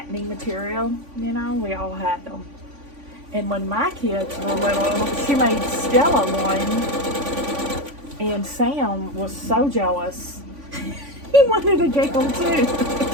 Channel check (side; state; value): left; late; 3.5 ms